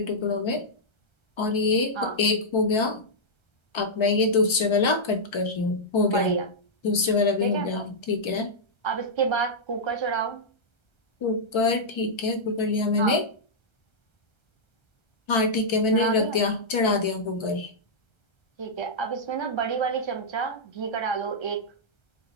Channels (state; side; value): late; right; 1.3 ms